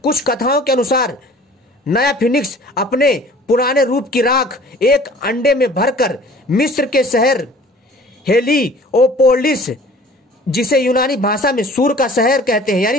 कुछ कथाओं के अनुसार नया फिनिक्स अपने पुराने रूप की राख एक अंडे में भरकर मिस्र के शहर हेलियोपोलिस, जिसे यूनानी भाषा में सूर का शहर कहते हैं,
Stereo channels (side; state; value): both; normal; correlation 0.48